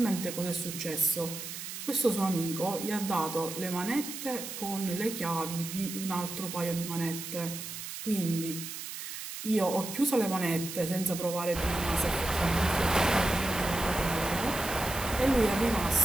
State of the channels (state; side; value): noise; right; hiss, 8 dB below the sound